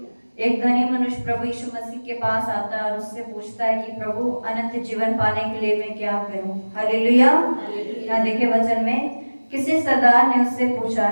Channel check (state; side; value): inverted; both; correlation -1.00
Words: एक धनी मनुष्य प्रभु यीशु मसीह के पास आता है और उससे पूछता है कि प्रभु अनंत जीवन पाने के लिए मैं क्या करूं। हालेलुया। यहाँ देखे वचन में, किसी सरदार ने उससे पूछा,